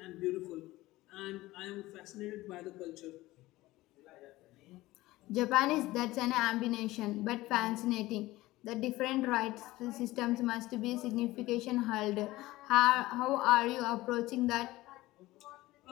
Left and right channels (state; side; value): quieter; right; 18.2 dB